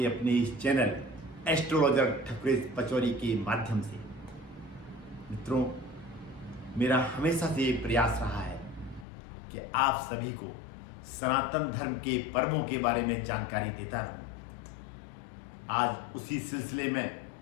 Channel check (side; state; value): right; drops out; at 9.1 s